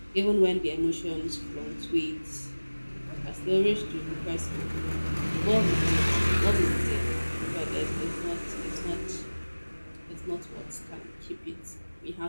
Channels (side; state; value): both; inverted; correlation -1.00